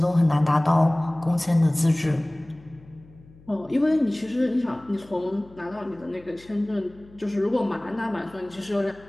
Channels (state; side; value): noise; left; hum, 25 dB below the sound